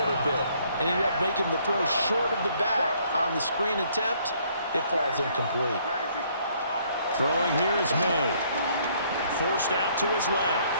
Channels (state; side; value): inverted; both; correlation -0.65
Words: bit and ended up making the throw short of the back on the screen attempt. It falls incomplete. Throwing here is May. Forced out to his left.